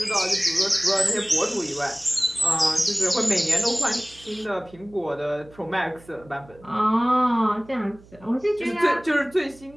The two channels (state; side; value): noise; right; hum, 24 dB below the sound